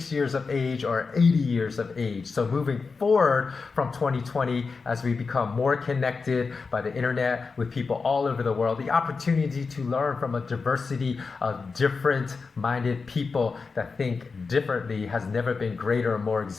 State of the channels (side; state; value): right; quieter; 4.6 dB